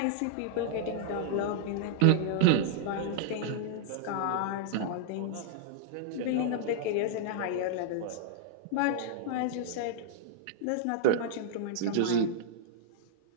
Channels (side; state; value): both; different; correlation -0.01